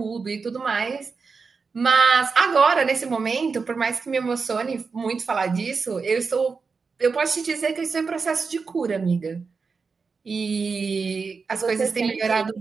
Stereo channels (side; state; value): left; quieter; 4.9 dB